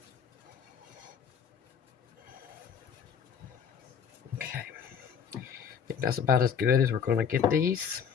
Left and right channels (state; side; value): quieter; right; 7.3 dB